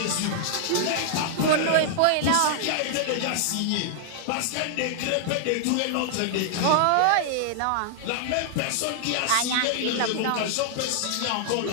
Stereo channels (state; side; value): different; both; correlation -0.01